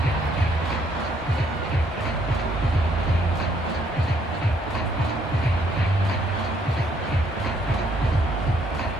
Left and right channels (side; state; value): both; normal; correlation 0.68